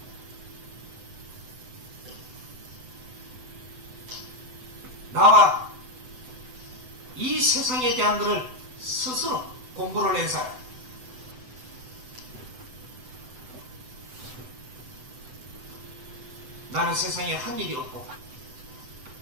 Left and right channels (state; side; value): late; left; 7.9 ms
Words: 나와 이 세상에 대한 것을 스스로 공부를 낸 사람. 나는 세상에 한 일이 없고